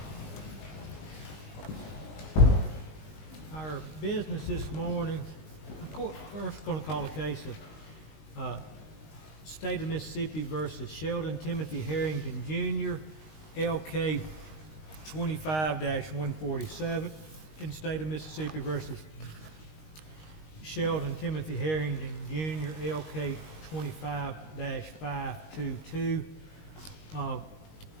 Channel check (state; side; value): late; right; 19 ms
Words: Our business this morning, of course, first going to call a case of State of Mississippi versus Sheldon Timothy Herrington Jr., LK 25-147, and State of Mississippi versus Sheldon Timothy Herrington Jr., LK 25-522.